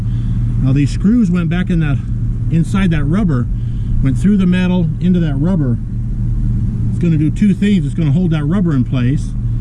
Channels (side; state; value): both; identical; correlation 1.00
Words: these screws went back in that, inside that rubber, went through the metal into that rubber. It's going to do two things. It's going to hold that rubber in place,